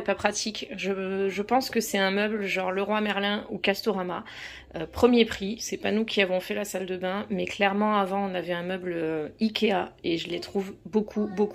pas pratique. Je pense que c'est un meuble genre Leroy Merlin ou Castorama. Premier prix, c'est pas nous qui avons fait la salle de bain, mais clairement avant on avait un meuble Ikea et je les trouve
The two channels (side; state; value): both; identical; correlation 1.00